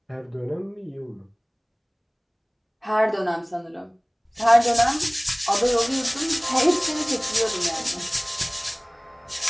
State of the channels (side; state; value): both; identical; correlation 1.00